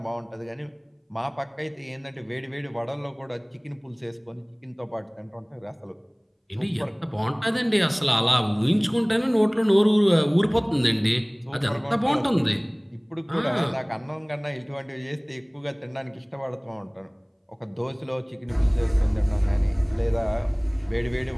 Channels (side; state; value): both; identical; correlation 1.00